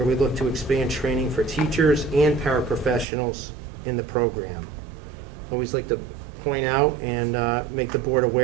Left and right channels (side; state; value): left; drops out; at 3.1 s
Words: we look to expand training for teachers and paraprofessionals in the program. Always like to point out and make the board